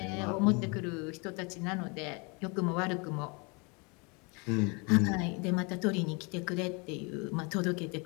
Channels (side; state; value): right; quieter; 30.7 dB